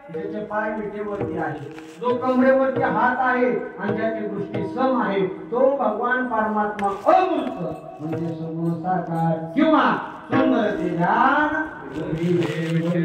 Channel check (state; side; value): identical; both; correlation 1.00